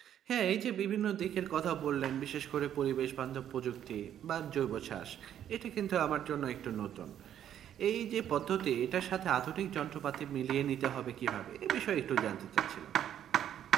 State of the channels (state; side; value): quieter; left; 10.3 dB